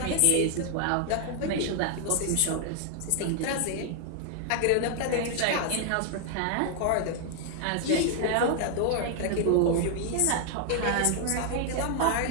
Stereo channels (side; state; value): both; different; correlation 0.00